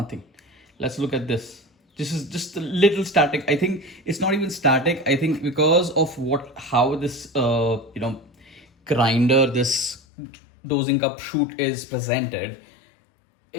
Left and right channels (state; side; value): drops out; right; at 10.0 s